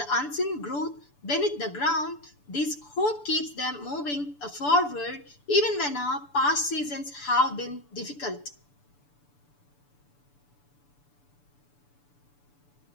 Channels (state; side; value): late; right; 6.9 ms